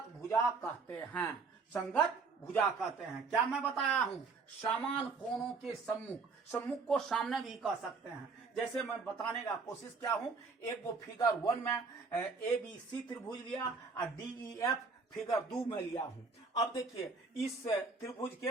भुजा कहते हैं। संगत भुजा कहते हैं। क्या मैं बताया हूं? समान कोणों के सम्मुख, सम्मुख को सामने भी कह सकते हैं। जैसे मैं बताने का कोशिश किया हूं, एक वो फिगर 1 में ABC त्रिभुज लिया और DEF फिगर 2 में लिया हूं। अब देखिए इस त्रिभुज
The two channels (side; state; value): left; quieter; 4.5 dB